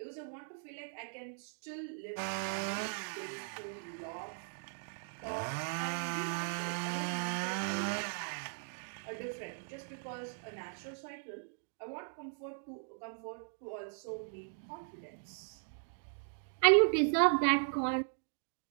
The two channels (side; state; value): left; silent; digital silence